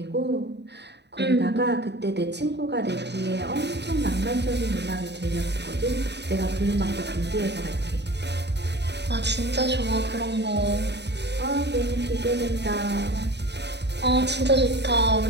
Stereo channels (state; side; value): late; left; 0.50 ms